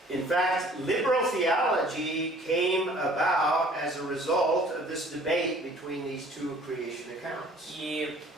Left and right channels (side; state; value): both; normal; correlation 0.53